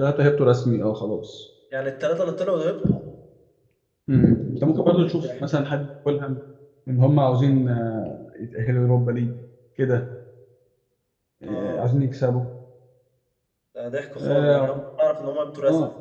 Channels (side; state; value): both; identical; correlation 1.00